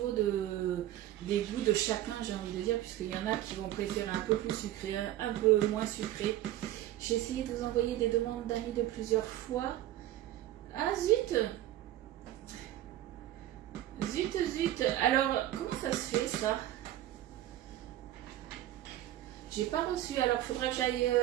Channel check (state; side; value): quieter; left; 13.7 dB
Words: des goûts de chacun, j'ai envie de dire, puisqu'il y en a qui vont préférer un peu plus sucré, un peu moins sucré. J'ai essayé de vous envoyer des demandes d'amis de plusieurs fois. Ah zut! Zut! Alors, comment ça se fait ça? J'ai pas reçu, alors il faudrait